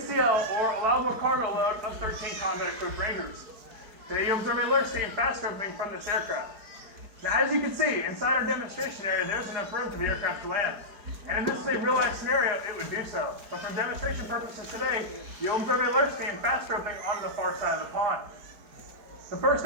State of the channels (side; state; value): left; late; 4.8 ms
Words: or allowable cargo load of 13 combat-equipped Rangers. Today you observe a lurch team fast roping from this aircraft. Now, as you can see, inside our demonstration area, there's enough room for the aircraft to land. And if this is a real-life scenario, it would do so. But for demonstration purposes today, you'll observe a lurch team fast roping onto the far side of the pond. The first